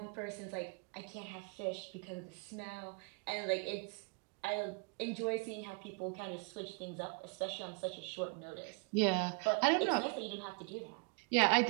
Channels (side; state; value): left; quieter; 33.1 dB